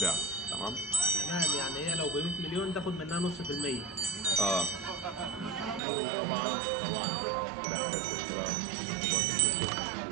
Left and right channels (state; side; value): drops out; left; at 5.8 s